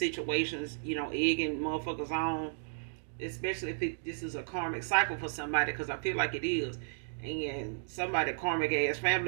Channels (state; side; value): silent; left; digital silence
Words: egging motherfuckers on, especially if this is a karmic cycle for somebody, because I feel like it is. And somebody karmic ass